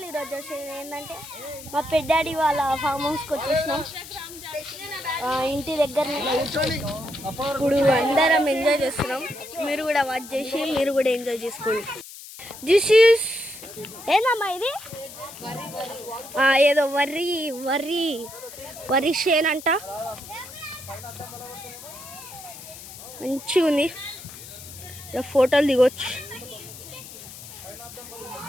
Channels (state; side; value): noise; left; hiss, 15 dB below the sound